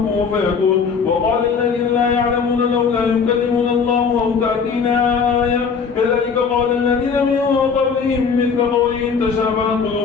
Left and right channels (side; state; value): right; quieter; 5.7 dB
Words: فيكون. وقال الذين لا يعلمون لولا يكلمون الله أو تأتينا آية كذلك قال الذين من قبلهم مثل قولهم تشابهت